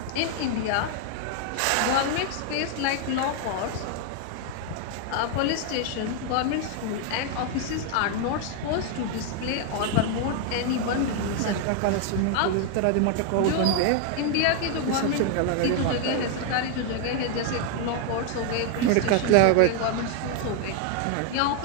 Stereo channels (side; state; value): both; different; correlation 0.00